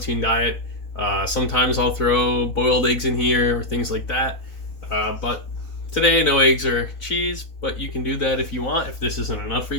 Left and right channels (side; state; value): right; late; 4.0 ms